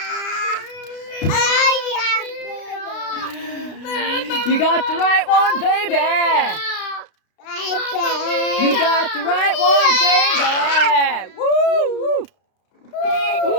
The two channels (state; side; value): late; right; 32 ms